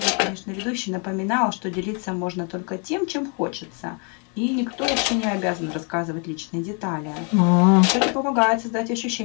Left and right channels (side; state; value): right; quieter; 37.6 dB